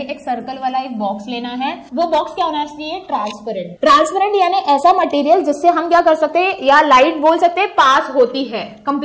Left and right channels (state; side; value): identical; both; correlation 1.00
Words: एक सर्कल वाला एक बॉक्स लेना है। वो बॉक्स क्या होना चाहिए? ट्रांसपेरेंट। ट्रांसपेरेंट यानी ऐसा मटेरियल जिससे हम क्या कर सकते हैं, या लाइट बोल सकते हैं, पास होती है